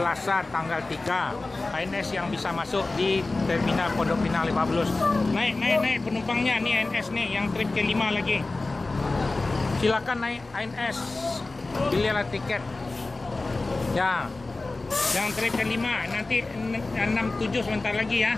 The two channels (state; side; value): quieter; right; 3.3 dB